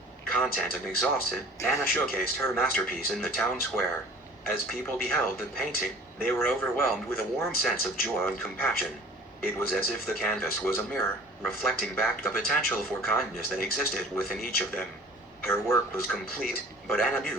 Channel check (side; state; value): both; normal; correlation 0.46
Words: Content and exhausted, Anna showcased her masterpiece in the town square. As people beheld the painting, they were overwhelmed with a warm sense of joy and compassion. It was as if the canvas was a mirror, reflecting back the potential for kindness that existed within each of them. Her work was complete, but Anna